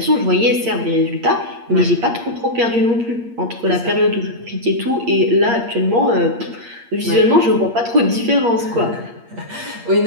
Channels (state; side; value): late; left; 8.6 ms